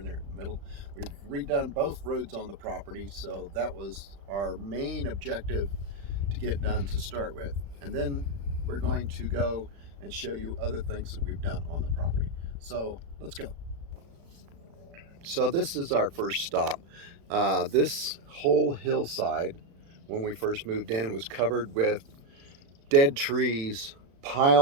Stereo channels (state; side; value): late; left; 36 ms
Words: there in the middle. We've redone both roads on the property, so that was our main objective to get done to start with. And then we're going to go and show you other things that we've done on the property. So let's go. So this is our first stop. This whole hillside, when we first moved in, was covered with dead trees,